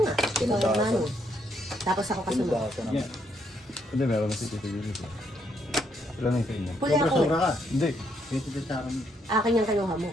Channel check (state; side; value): normal; both; correlation 0.74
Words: nga. Ikaw ang Pinudasan. ano. Tapos ako kasunod. Pinudasan naman. Yeah. Hindi, meron na si Tito Yuli ko. Ilan na yung sa inyo? Huli ako. Sobra-sobra ka. Hindi. 20 sa akin. Akin yung kinuha mo.